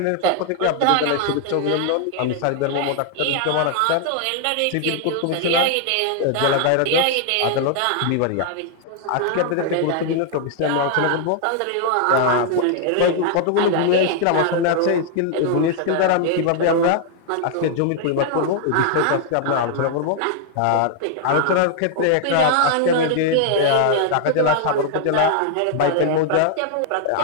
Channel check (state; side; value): different; both; correlation 0.00